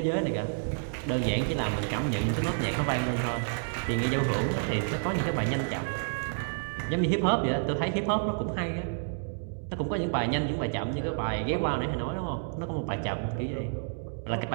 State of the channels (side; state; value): left; silent; digital silence